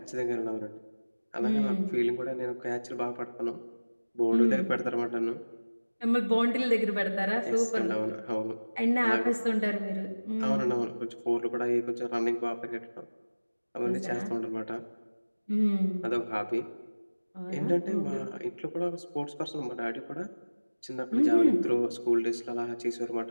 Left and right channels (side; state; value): both; inverted; correlation -1.00